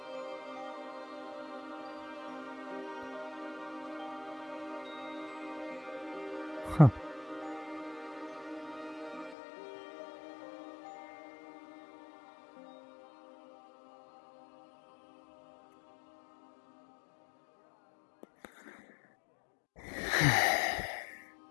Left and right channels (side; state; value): right; drops out; at 9.3 s